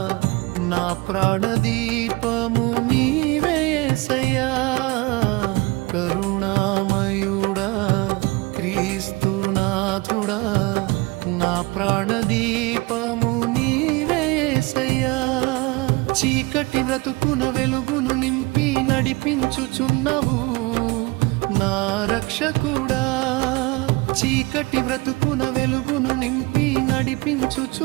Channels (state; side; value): quieter; left; 23.8 dB